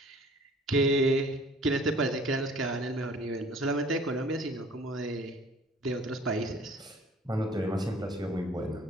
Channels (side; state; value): both; normal; correlation 0.52